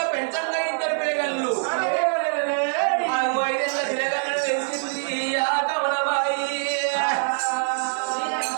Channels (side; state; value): left; silent; digital silence